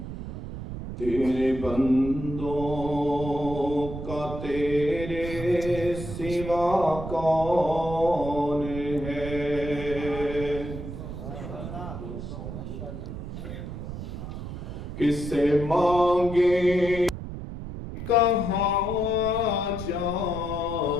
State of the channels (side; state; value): right; noise; rumble, 8 dB below the sound